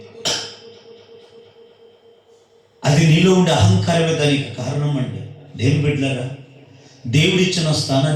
అది నీలో ఉండే అహంకారమే దానికి కారణం అండి. దేవుని బిడ్డలారా, దేవుడిచ్చిన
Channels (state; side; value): identical; both; correlation 1.00